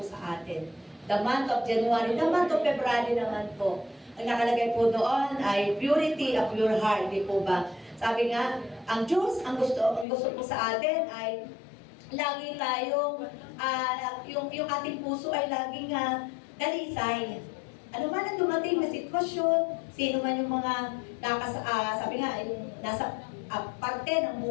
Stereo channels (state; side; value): drops out; right; at 10.1 s